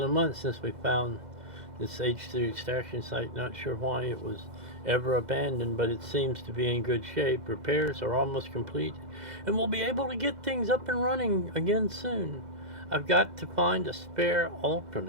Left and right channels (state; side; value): late; left; 2.0 ms